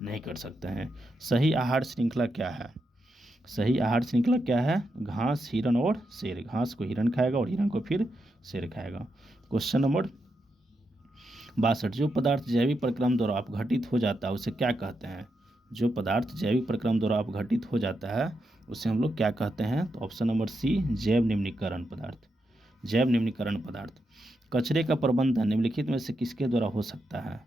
नहीं कर सकते हैं। सही आहार श्रृंखला क्या है? सही आहार श्रृंखला क्या है? घास, हिरण और शेर। घास को हिरण खाएगा और हिरण को फिर शेर खाएगा। Question number 62। जो पदार्थ जैविक प्रक्रम द्वारा अपघटित हो जाता है उसे क्या कहते हैं? जो पदार्थ जैविक प्रक्रम द्वारा अपघटित हो जाता है उसे हम लोग क्या कहते हैं? तो ऑप्शन नंबर सी जैव निम्नीकरण पदार्थ। जैव निम्नीकरण पदार्थ। कचरे का प्रबंधन निम्नलिखित में से किसके द्वारा हो सकता है?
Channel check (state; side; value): normal; both; correlation 0.84